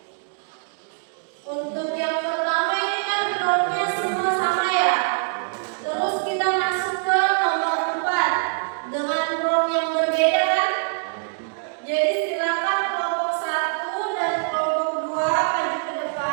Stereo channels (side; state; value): left; silent; digital silence